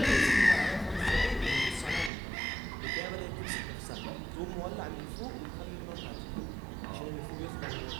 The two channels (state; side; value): drops out; left; at 2.1 s